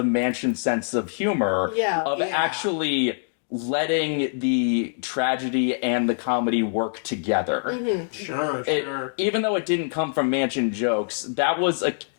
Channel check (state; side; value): silent; right; digital silence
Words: Mansion sense of humor. Actually letting the tragedy and the comedy work together. Mm-hmm. Sure. Even though it didn't come from Mansion jokes, that was